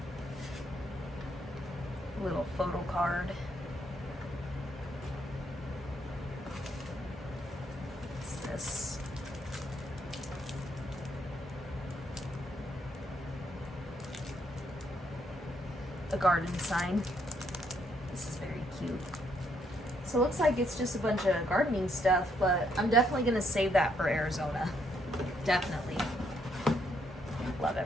A little photo card. What's this? A garden sign. This is very cute. So it looks like it's just a bunch of gardening stuff, but I'm definitely gonna save that for Arizona. Definitely. Love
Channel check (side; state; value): both; normal; correlation 0.73